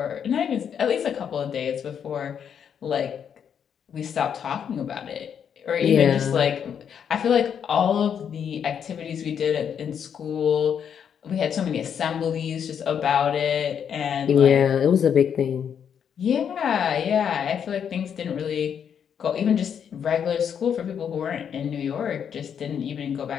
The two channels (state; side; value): quieter; right; 8.0 dB